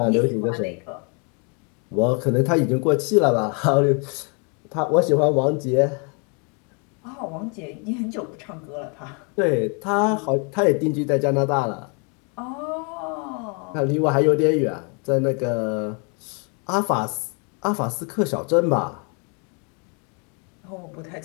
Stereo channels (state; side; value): quieter; right; 35.8 dB